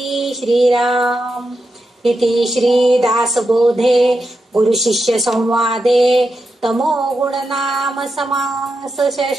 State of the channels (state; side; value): normal; both; correlation 0.87